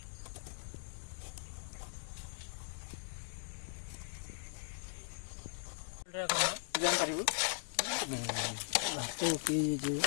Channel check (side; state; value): right; silent; digital silence